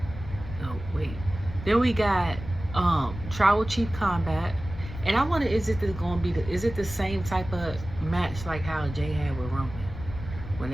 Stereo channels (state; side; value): noise; left; rumble, 11 dB below the sound